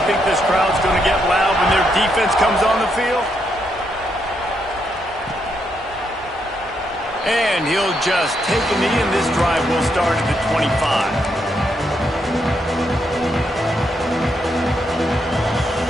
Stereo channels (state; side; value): normal; both; correlation 0.78